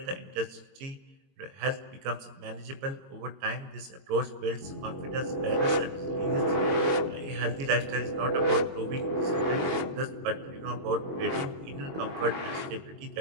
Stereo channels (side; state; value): left; late; 22 ms